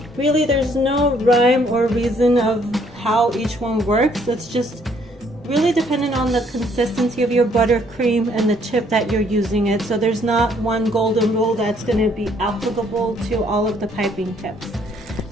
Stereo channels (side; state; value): both; normal; correlation 0.65